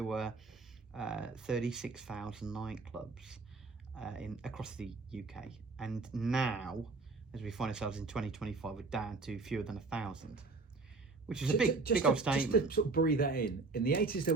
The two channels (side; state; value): left; quieter; 3.9 dB